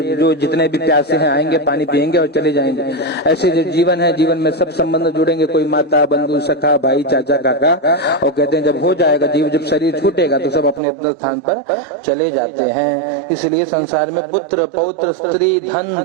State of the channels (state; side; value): drops out; left; at 10.8 s